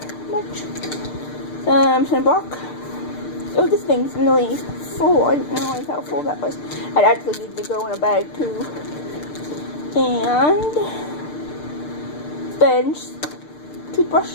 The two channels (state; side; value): late; right; 6.7 ms